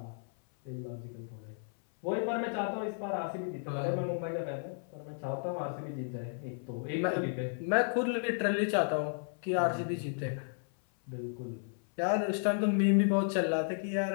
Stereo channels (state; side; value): silent; right; 55 dB below the other